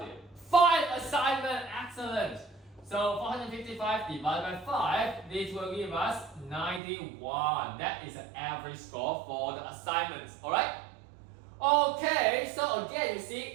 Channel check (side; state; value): left; drops out; at 6.8 s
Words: there? 5 assignments, excellent. So 455 divided by 5, this will give us 91. That is the average score for the assignments, alright? Okay, so again, you see